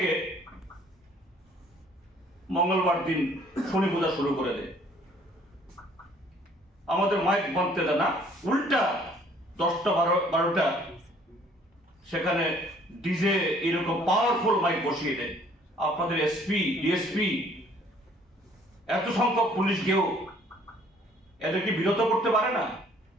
মঙ্গলবার দিন শনি পূজা শুরু করে দেয়। আমাদের মাইক বাঁধতে দেয় না, উল্টা 10টা-12টা সেখানে ডিজে এরকম পাওয়ারফুল মাইক বসিয়ে দেয়। আপনাদের এসপি, ডিএসপি, এত সংখ্যক পুলিশ গিয়েও এদেরকে বিরত করতে পারে না।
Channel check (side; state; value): both; normal; correlation 0.59